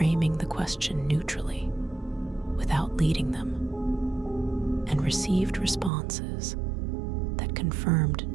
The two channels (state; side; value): drops out; left; at 5.9 s